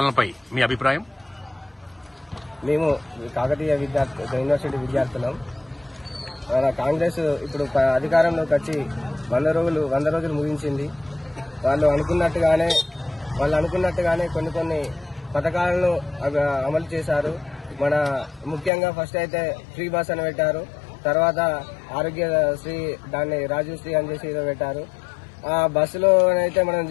మీ అభిప్రాయం? మేము కాకతీయ యూనివర్సిటీ విద్యార్థులం. మన కాంగ్రెస్ ఇప్పుడు అధికారంలోకి వచ్చి 100 రోజులు ముగించింది. వాళ్ళు అనుకున్నట్టుగానే కొన్ని పథకాలను అమలు చేశారు. మన ముఖ్యంగా ఫస్ట్ అయితే ఫ్రీ బస్ అని పెట్టారు. తర్వాత ఆరోగ్యశ్రీ, దాన్ని రాజీవ్ శ్రీ అని చేసి పెట్టారు. ఆ బస్సులో అయితే మనం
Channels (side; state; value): right; drops out; at 18.7 s